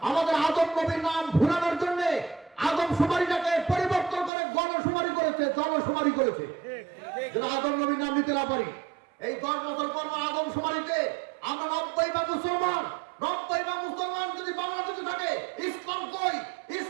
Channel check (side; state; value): left; drops out; at 4.3 s